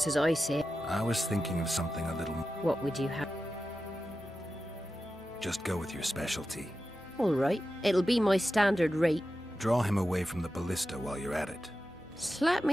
as I say. I was thinking of something a little... What would you have? Just go with your specialty. All right, it'll be my standard rate. Draw him away from the ballista while you're at it. Slap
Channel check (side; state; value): right; noise; hum, 26 dB below the sound